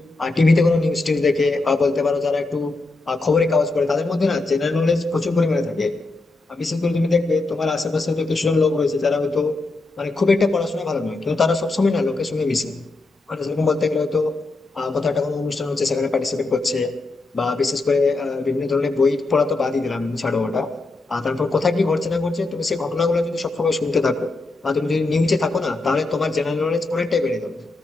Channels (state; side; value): quieter; right; 3.2 dB